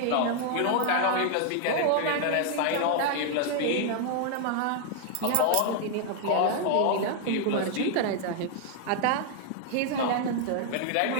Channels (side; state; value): both; different; correlation 0.00